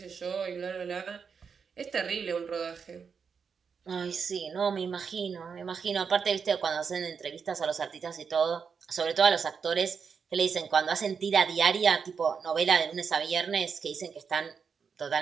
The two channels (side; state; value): left; quieter; 6.1 dB